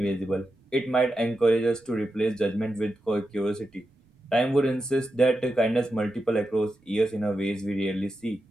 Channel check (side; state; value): both; normal; correlation 0.88